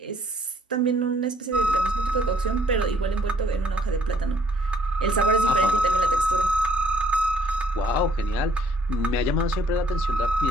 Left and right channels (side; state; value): both; normal; correlation 0.63